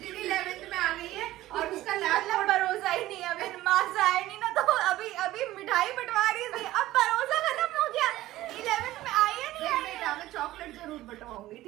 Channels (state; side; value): quieter; left; 15.8 dB